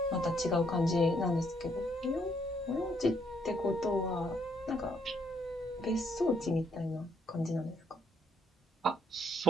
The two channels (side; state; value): both; normal; correlation 0.71